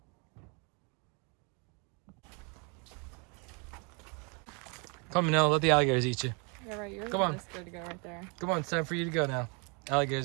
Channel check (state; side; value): quieter; left; 33.8 dB